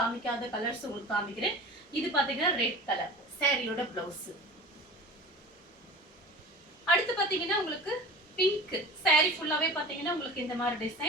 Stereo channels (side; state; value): both; normal; correlation 0.36